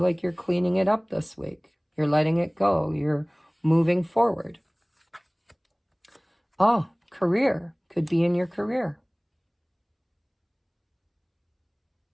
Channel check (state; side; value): identical; both; correlation 1.00